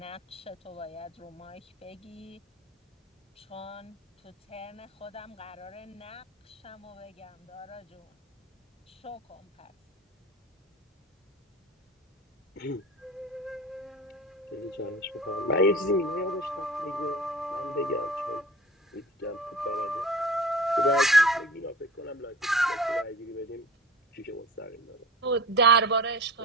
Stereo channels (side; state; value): both; normal; correlation 0.38